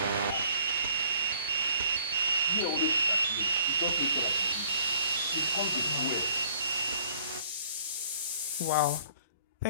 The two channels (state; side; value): inverted; both; correlation -0.58